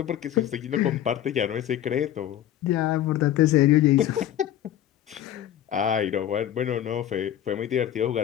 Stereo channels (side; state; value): right; quieter; 11.6 dB